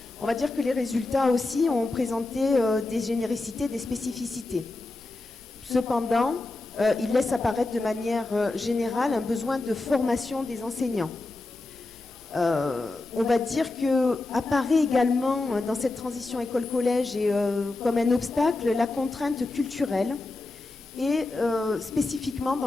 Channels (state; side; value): quieter; right; 3.1 dB